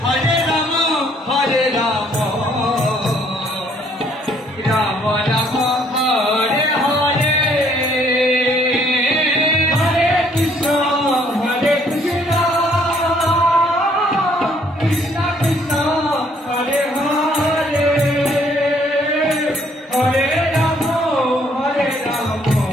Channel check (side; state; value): both; normal; correlation 0.64